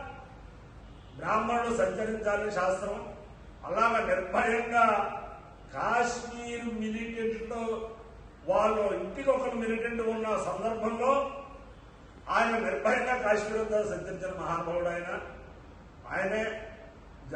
బ్రాహ్మణుడు సంచరించాలని శాస్త్రం. అలాగా నిర్భయంగా కాశ్మీర్ మిలిటెంట్ వాళ్ళు ఇంటికి ఒకరు మిలిటెంట్ ఉన్న సందర్భంలో ఆయన నిర్భయంగా కాశ్మీర్ అంతా సంచరించిన మహానుభావుడు ఆయనే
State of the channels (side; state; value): both; identical; correlation 1.00